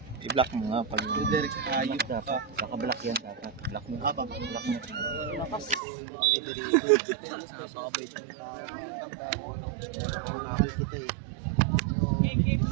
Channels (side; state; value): left; drops out; at 5.8 s